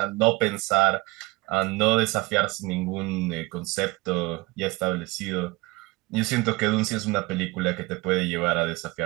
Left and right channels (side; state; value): left; quieter; 22.9 dB